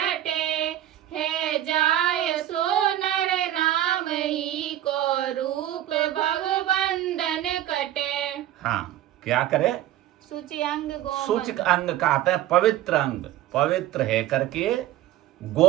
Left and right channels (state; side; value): quieter; left; 12.8 dB